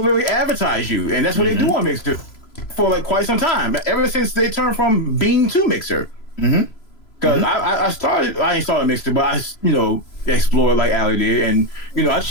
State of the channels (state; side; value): late; right; 3.0 ms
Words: really advertise you, and that's what they do on Mixer for like quite some time. Ever since they turned from Bean to Mixer. Because I ain't started Mixer, but I explored like Ali did, and I